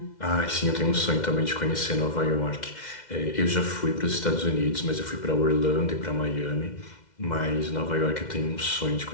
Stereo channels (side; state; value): right; late; 2.1 ms